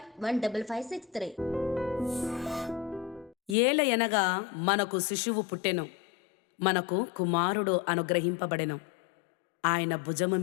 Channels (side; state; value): right; drops out; at 3.6 s